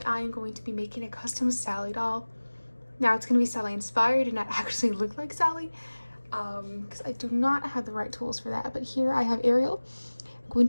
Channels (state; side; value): inverted; both; correlation -1.00